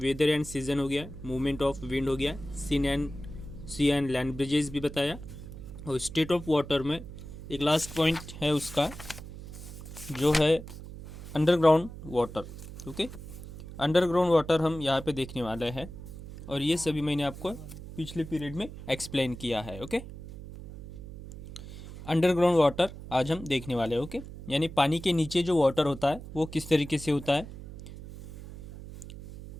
एंड सीजन हो गया, मूवमेंट ऑफ विंड हो गया, सी एंड लैंड ब्रिजेस भी बताया, और स्टेट ऑफ वाटर में एक लास्ट पॉइंट है उसका जो है underground water. Okay, underground water हम यहाँ पे देखने वाले हैं, और ये सभी मैंने आपको पिछले पीरियड में एक्सप्लेन किया है। ओके, अंडरग्राउंड वाटर आज हम देखने वाले हैं। ओके, यानी पानी के नीचे जो वाटर होता है वो किस तरीके से होता है।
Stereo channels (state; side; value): noise; right; hum, 13 dB below the sound